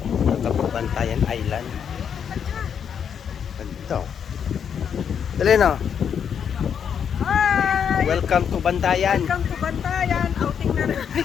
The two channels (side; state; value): right; quieter; 7.7 dB